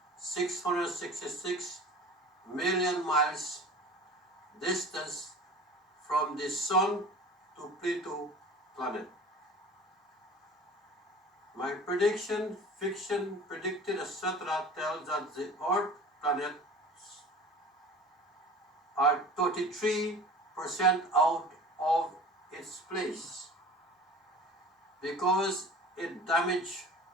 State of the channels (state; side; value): normal; both; correlation 0.40